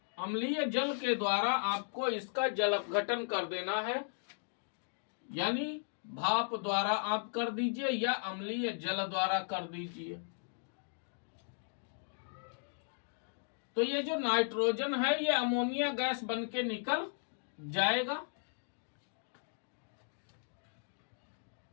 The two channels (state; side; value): silent; right; digital silence